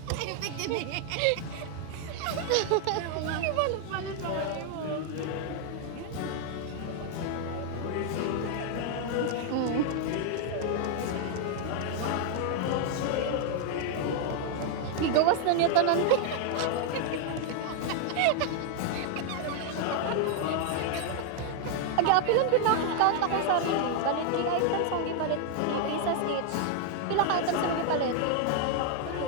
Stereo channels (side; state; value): both; different; correlation 0.00